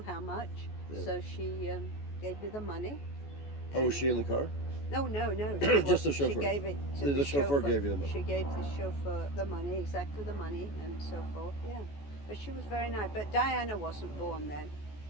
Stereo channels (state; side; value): late; right; 14 ms